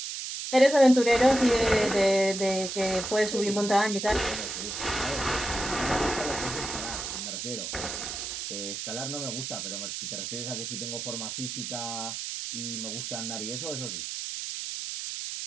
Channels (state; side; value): noise; right; hiss, 5 dB below the sound